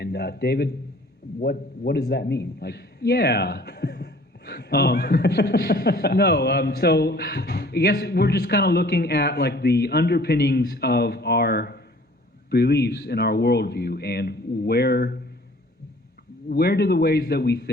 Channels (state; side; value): normal; both; correlation 0.52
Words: David, what does that mean? Yeah. So I guess we're just kind of looking at the underpinnings of our beliefs in our worldview, and where do the ways that we